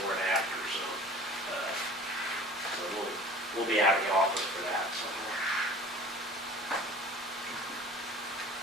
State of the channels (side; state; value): both; normal; correlation 0.43